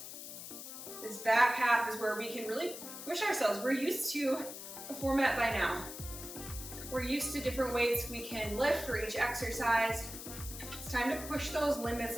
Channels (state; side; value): noise; left; hiss, 10 dB below the sound